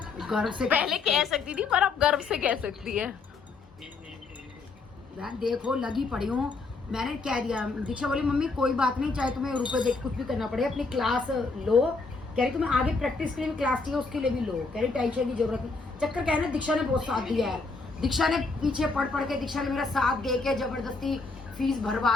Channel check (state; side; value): quieter; right; 4.1 dB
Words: गर्व से पहले कह सकती थी पर अब गर्व से कह सकती है। बहन देखो लगी पड़ी हूँ, मैंने कह दिया। दीक्षा बोली मम्मी कोई बात नहीं, चाहे तुम्हें रुपए देख कुछ भी करना पड़े, अपनी क्लास लो, कह रही तुम्हें आगे प्रैक्टिस के लिए क्लास चाहिए उसके लिए भी लो, कह रही टेंशन की जरूरत नहीं। चक्कर क्या है ना, दीक्षा ने बहुत साथ दिया है, दीक्षा ने पीछे पढ़ के दीक्षा ने मेरा साथ दे के जबरदस्ती फीस